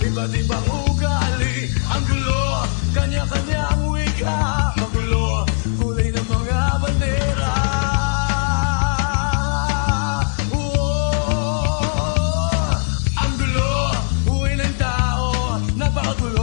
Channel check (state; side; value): silent; right; 58 dB below the other